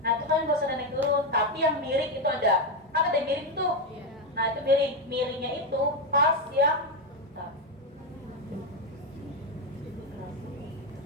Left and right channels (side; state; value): both; normal; correlation 0.08